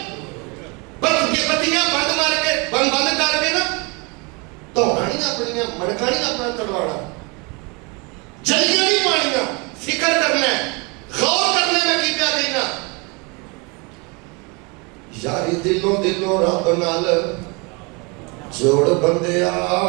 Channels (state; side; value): quieter; left; 30.0 dB